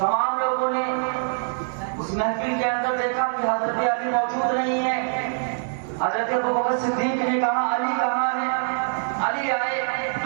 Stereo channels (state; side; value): silent; left; digital silence